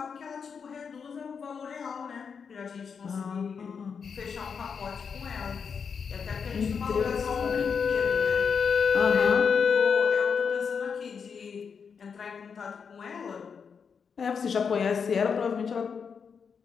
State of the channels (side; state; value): right; quieter; 6.2 dB